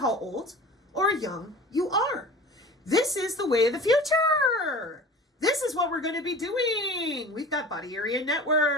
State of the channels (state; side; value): normal; both; correlation 0.38